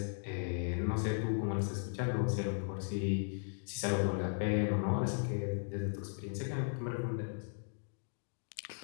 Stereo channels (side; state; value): right; silent; digital silence